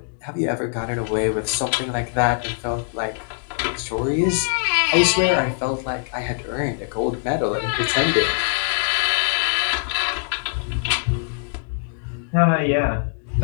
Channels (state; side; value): silent; right; 59 dB below the other